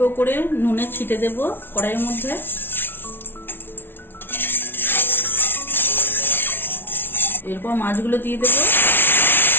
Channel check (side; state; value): right; late; 0.11 ms